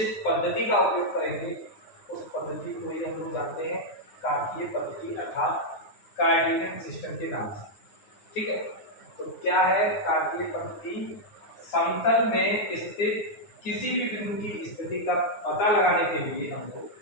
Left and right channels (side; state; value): right; late; 9.7 ms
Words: पद्धति का उपयोग करेंगे उस पद्धति को ही हम लोग जानते हैं कार्तीय पद्धति अर्थात कोऑर्डिनेट सिस्टम के नाम से। ठीक है, तो क्या है कार्तीय पद्धति, समतल में स्थित किसी भी बिंदु की स्थिति का पता लगाने के लिए हम लोग